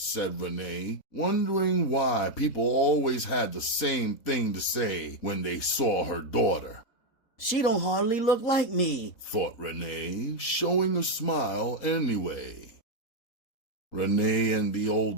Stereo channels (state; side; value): late; right; 4.0 ms